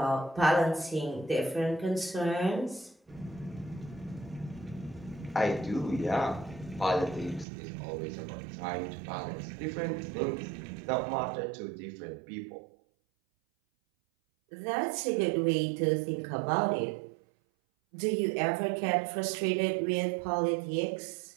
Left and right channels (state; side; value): drops out; left; at 7.5 s